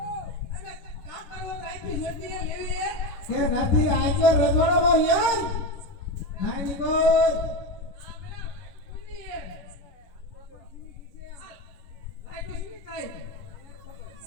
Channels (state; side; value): late; right; 11 ms